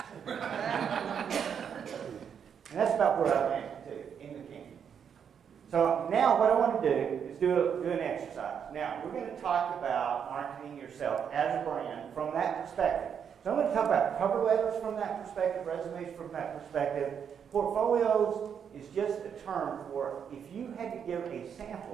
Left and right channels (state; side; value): quieter; left; 7.7 dB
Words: And that's about where I landed too, in the canyon. So now what I want to do is do an exercise. Now, we're going to talk about marketing yourself as a brand from that perspective. So I'm going to talk about cover letters from that perspective, resumes from that perspective. Portfolios is just a term for if you had to give a